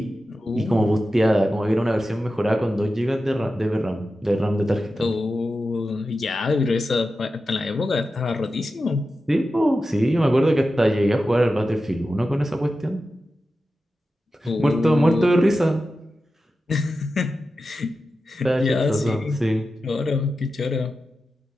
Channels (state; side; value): normal; both; correlation 0.92